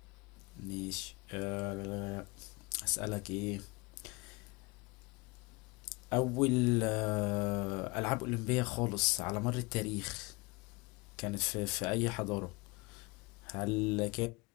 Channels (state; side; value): quieter; right; 25.9 dB